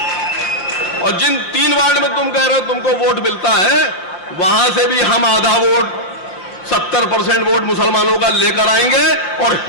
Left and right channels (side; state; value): right; late; 5.6 ms